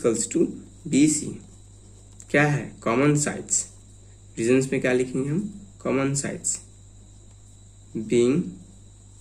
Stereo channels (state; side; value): identical; both; correlation 1.00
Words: to B C क्या है, कॉमन साइड्स। रीजन्स में क्या लिखेंगे हम, common sides being